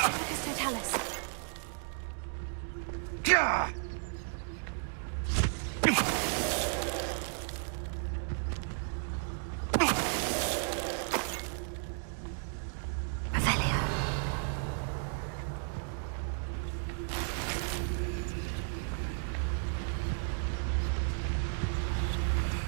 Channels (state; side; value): silent; left; 55 dB below the other